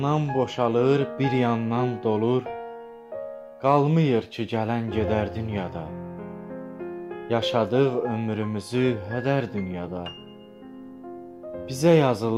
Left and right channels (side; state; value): both; identical; correlation 1.00